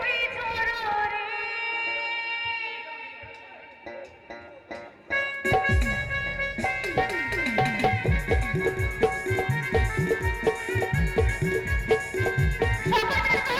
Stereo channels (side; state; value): both; identical; correlation 1.00